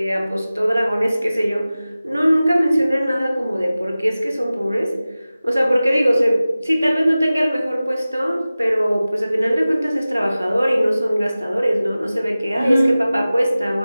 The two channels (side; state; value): both; inverted; correlation -0.96